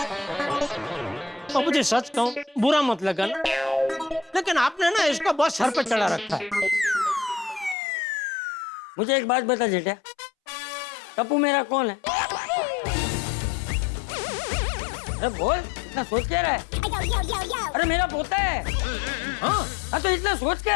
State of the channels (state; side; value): drops out; right; at 7.8 s